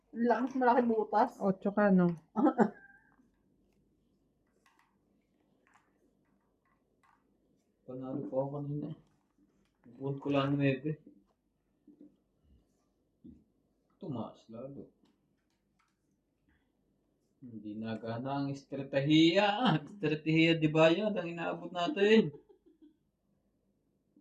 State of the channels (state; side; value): identical; both; correlation 1.00